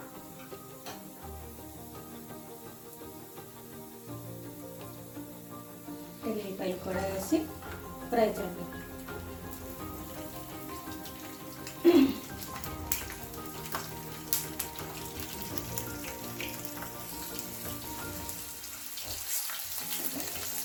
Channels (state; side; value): identical; both; correlation 1.00